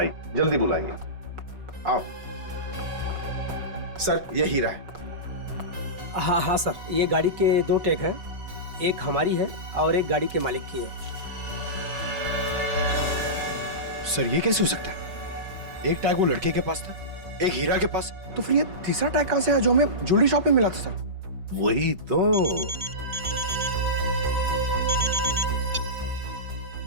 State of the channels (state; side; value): late; left; 5.3 ms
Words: जल्दी बुलाइए। आओ। सर ये हीरा है। हाँ हाँ सर, ये गाड़ी के 2 टैग हैं, एक हमारी है और एक गाड़ी के मालिक की है। सर ये कैसे हो सकता है? एक टैग वो लड़के के पास था, एक हीरा के पास, तो फिर ये तीसरा टैग कहां से आया जो हमें ज्वेलरी शॉप में मिला था सर? वही तो।